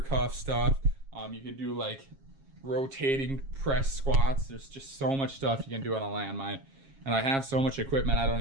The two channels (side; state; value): left; late; 7.4 ms